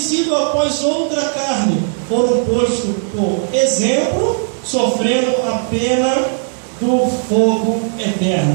idos após outra carne, foram postos por exemplo, sofrendo a pena do fogo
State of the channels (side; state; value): left; silent; digital silence